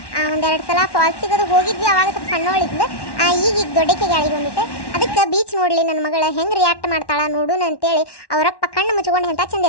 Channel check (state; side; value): late; right; 1.1 ms